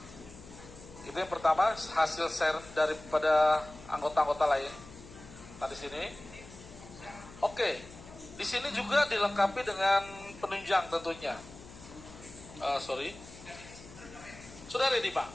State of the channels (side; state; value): left; noise; hum, 18 dB below the sound